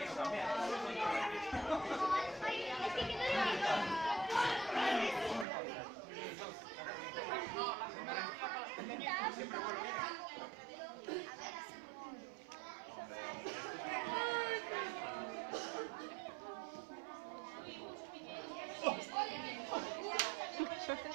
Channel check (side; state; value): left; drops out; at 5.5 s